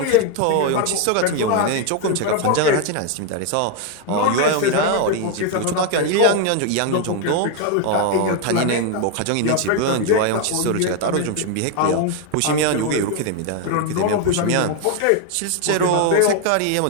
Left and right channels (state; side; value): different; both; correlation 0.01